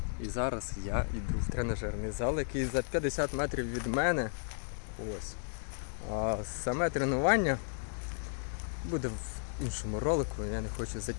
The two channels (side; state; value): right; silent; digital silence